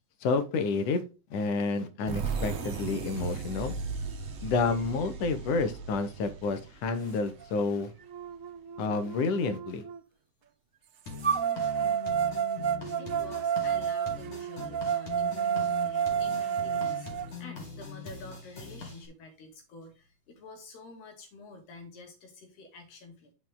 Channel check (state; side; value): late; right; 8.0 ms